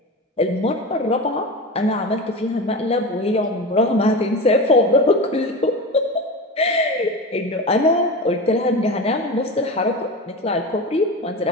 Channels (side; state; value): both; normal; correlation 0.26